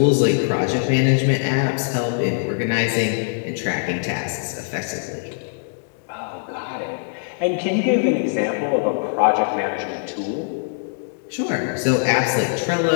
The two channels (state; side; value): silent; right; digital silence